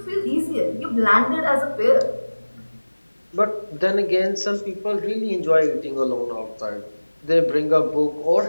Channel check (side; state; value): both; inverted; correlation -1.00